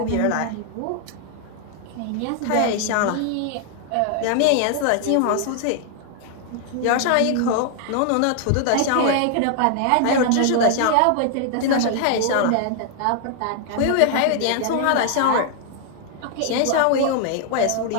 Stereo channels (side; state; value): both; different; correlation 0.00